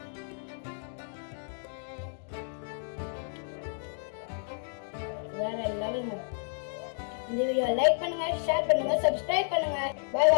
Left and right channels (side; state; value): right; silent; digital silence